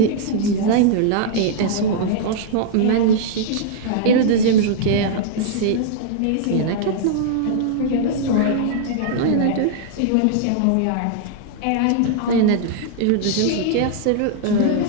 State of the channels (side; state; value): both; different; correlation -0.01